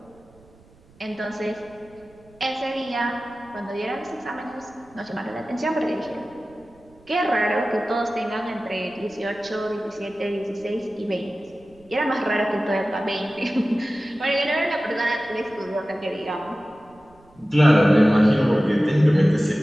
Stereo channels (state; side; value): noise; right; rumble, 28 dB below the sound